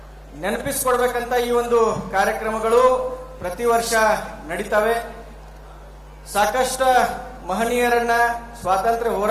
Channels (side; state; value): both; identical; correlation 1.00